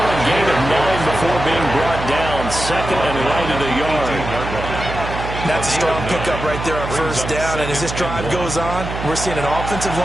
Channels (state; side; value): noise; right; hum, 7 dB below the sound